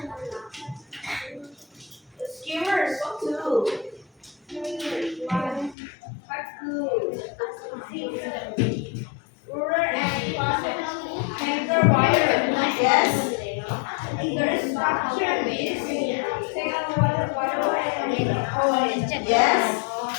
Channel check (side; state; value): right; drops out; at 5.8 s